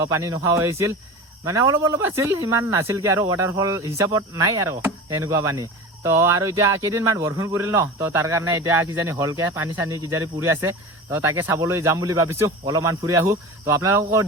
পানী নোখোৱা হৈছিল মানে অলপ আছিল ইমান নাছিল কি আৰু ৱাটাৰফল হিচাপত নাই আৰু এনেকুৱা পানী তো আৰু এতিয়া কেইদিনমান বৰষুণ পৰিল ন তো তাৰ কাৰণে এতিয়া কিজানি হলকে পানী চানী কিজানি পৰি আছে তো তাকে চাবলৈ যাম বুলি ভাবিছো অলপমান ফুৰি আহো তো আপোনালোকক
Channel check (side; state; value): both; normal; correlation 0.32